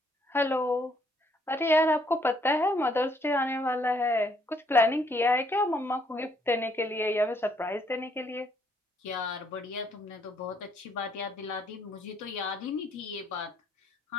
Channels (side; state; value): both; normal; correlation 0.68